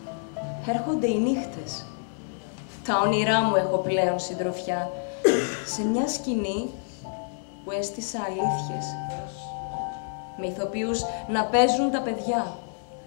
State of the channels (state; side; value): silent; right; 60 dB below the other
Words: έρχονται οι νύχτες. Τα όνειρά μου έχω πλέον συντροφιά σε μια σκηνή που έστησα αλήθειες. Με ηθοποιούς να παίζουν τα παιδιά.